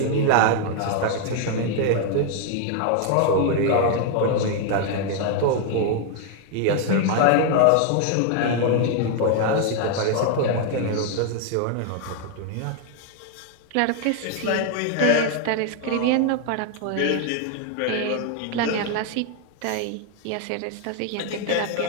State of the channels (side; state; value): both; different; correlation 0.00